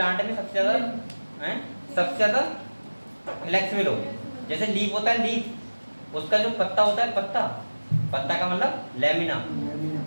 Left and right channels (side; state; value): both; inverted; correlation -1.00